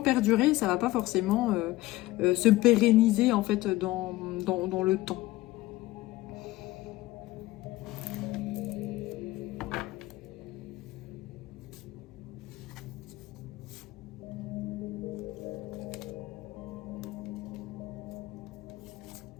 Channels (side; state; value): right; quieter; 17.9 dB